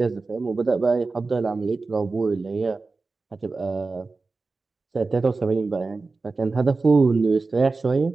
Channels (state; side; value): quieter; left; 3.8 dB